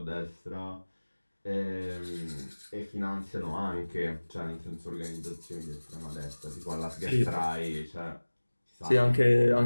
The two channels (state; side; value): inverted; both; correlation -1.00